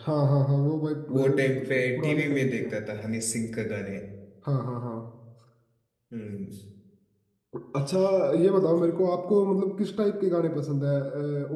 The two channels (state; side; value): identical; both; correlation 1.00